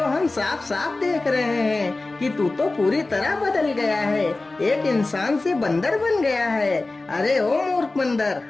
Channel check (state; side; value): quieter; right; 3.2 dB